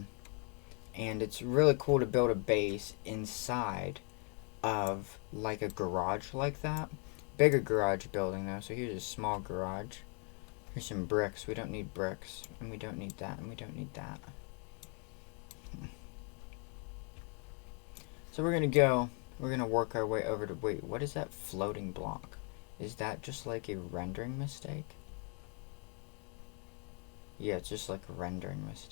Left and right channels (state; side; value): quieter; right; 37.8 dB